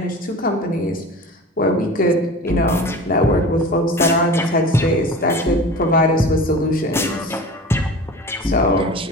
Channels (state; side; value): normal; both; correlation 0.36